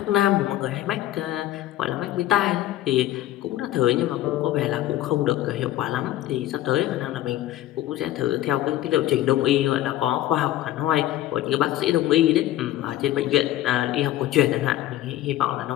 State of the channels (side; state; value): right; quieter; 14.1 dB